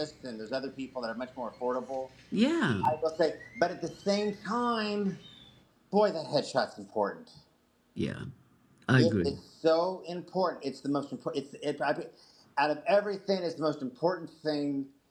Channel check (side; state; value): both; identical; correlation 1.00